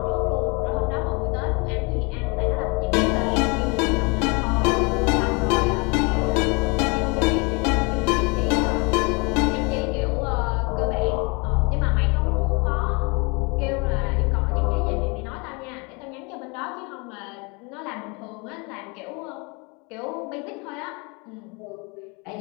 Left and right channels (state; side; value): quieter; right; 30.3 dB